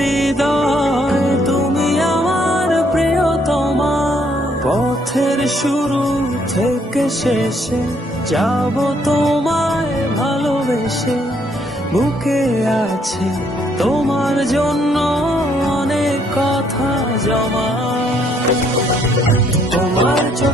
তুমি আমার প্রিয়তমা। পথের শুরু থেকে শেষে যাব তোমায় ভালোবেসে, বুকে আছে তোমার জন্য অনেক কথা জমা। তোমার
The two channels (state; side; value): normal; both; correlation 0.69